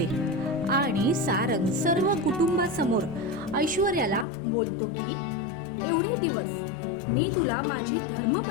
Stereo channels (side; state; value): right; drops out; at 4.2 s